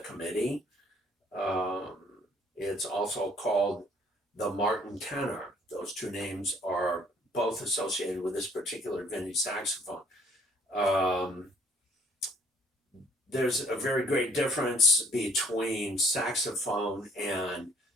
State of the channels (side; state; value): both; normal; correlation 0.60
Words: Um, it's also called the Martin tenor. Those two names are both associated with this particular vintage saxophone. Um, there's a very great difference between saxophone and